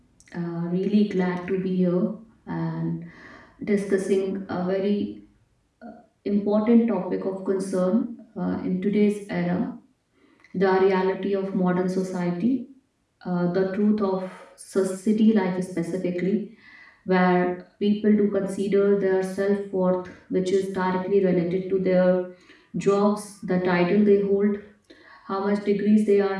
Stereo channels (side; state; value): both; identical; correlation 1.00